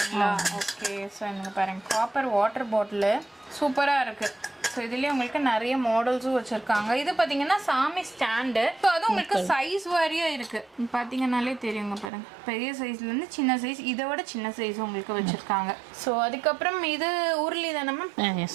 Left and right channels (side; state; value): left; drops out; at 12.1 s